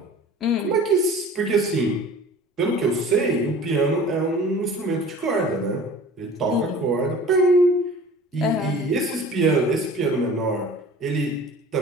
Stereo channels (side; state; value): both; normal; correlation 0.43